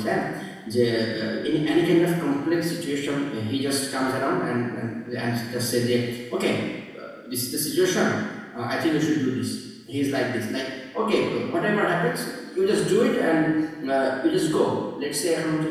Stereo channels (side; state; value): both; identical; correlation 1.00